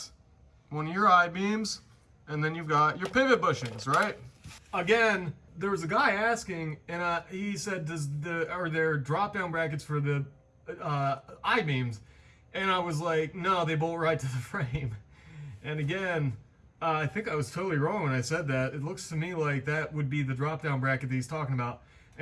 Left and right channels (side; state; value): both; identical; correlation 1.00